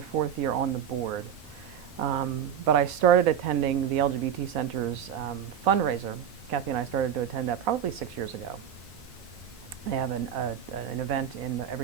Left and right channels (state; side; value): quieter; left; 8.7 dB